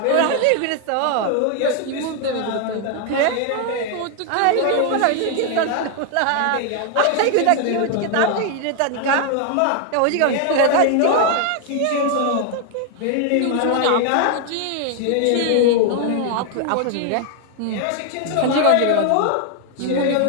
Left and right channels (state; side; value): different; both; correlation 0.00